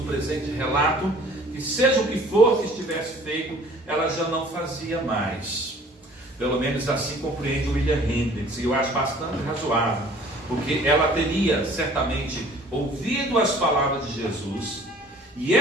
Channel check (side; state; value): both; normal; correlation 0.51